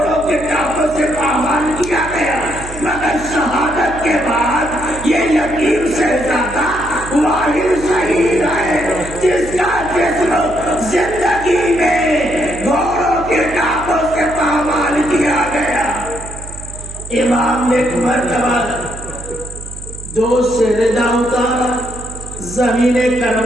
کے ٹانپوں سے پامال کیا گیا، مگر شہادت کے بعد یہ یتیم شہزادہ واحد شہید ہے جس کا جسم زندگی میں گھوڑوں کے ٹانپوں سے پامال کیا گیا. امام نے ایک مرتبہ دوست سے ردا اتارا، زمین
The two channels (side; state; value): right; noise; hum, 13 dB below the sound